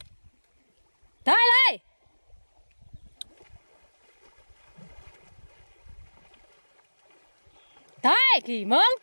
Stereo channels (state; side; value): inverted; both; correlation -1.00